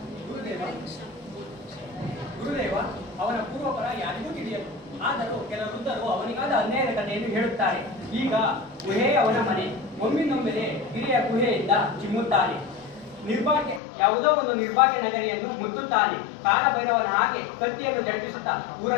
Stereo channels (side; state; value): right; drops out; at 13.8 s